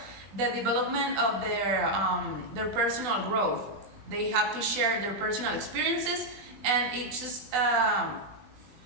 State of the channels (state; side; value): late; left; 20 ms